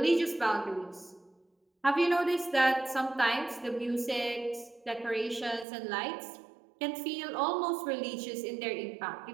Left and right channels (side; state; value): left; drops out; at 5.7 s